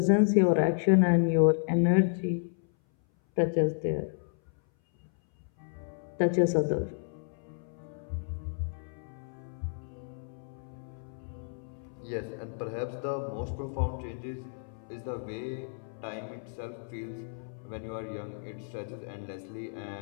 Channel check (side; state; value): right; silent; 57 dB below the other